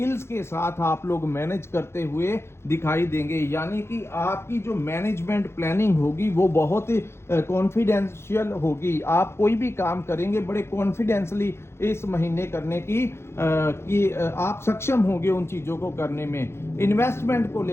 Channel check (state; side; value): late; right; 0.12 ms